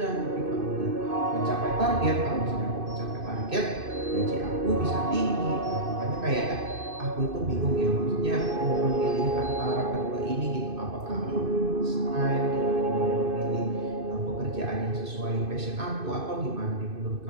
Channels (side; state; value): left; late; 2.5 ms